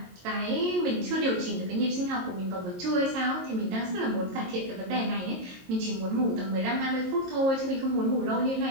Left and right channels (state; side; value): late; left; 22 ms